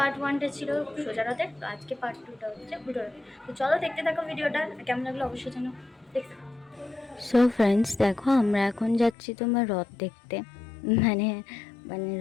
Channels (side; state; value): right; drops out; at 9.2 s